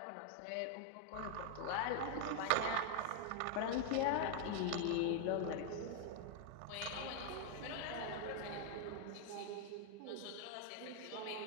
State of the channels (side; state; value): both; different; correlation 0.00